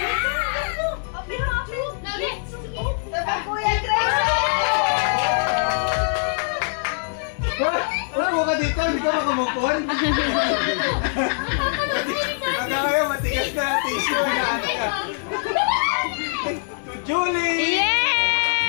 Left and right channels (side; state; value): right; silent; 64 dB below the other